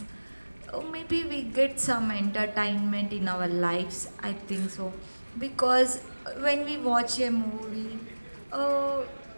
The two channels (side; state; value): both; inverted; correlation -1.00